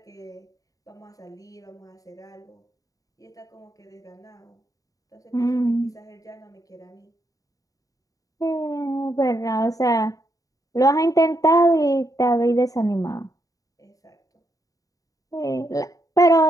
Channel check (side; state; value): right; late; 0.17 ms